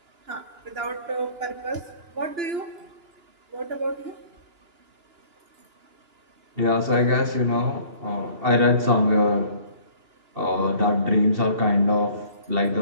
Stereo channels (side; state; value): left; late; 2.7 ms